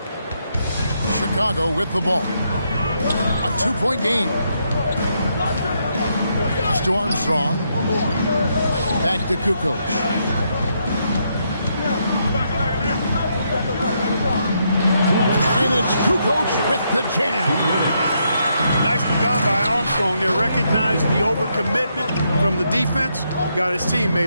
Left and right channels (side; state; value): both; inverted; correlation -0.78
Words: Chicago with the ball. A 2-point game. Pass to Armstrong. Back to Kukoc. And it's Kukoc with the jam. Nicely done by Armstrong. They recognized the overcommitment from the defense. Got his